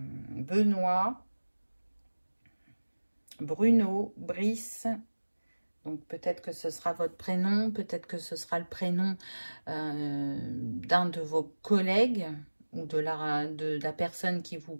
Bruno, Brice. Donc, peut-être que ce sera votre prénom, peut-être que ce sera le prénom d'un de vos collègues, ou de la personne qui vous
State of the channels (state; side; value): inverted; both; correlation -1.00